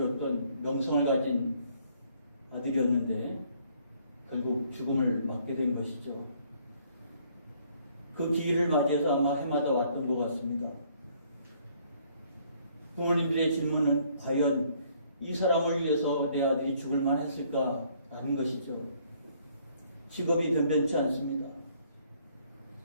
명성을 가진 아들이었는데 결국 죽음을 맞게 된 것이죠. 그 기일을 맞이해서 아마 해마다 왔던 것 같습니다. 부모님들의 질문은 과연 이 사람을 위해서 내 아들이 죽을 만했을까라는 것이죠. 직업이 변변치 않습니다.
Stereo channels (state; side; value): inverted; both; correlation -0.64